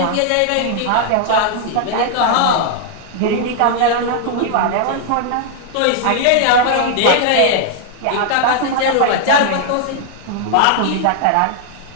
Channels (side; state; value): both; different; correlation 0.00